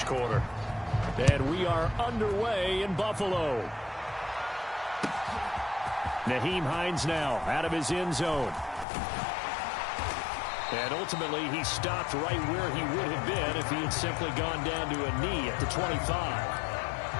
quarter. And we are underway in Buffalo. Nyheim Hines now out of his end zone. And ultimately, he stopped right where he would have been if he had simply gone down to a knee at the 25.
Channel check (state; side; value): drops out; right; at 8.8 s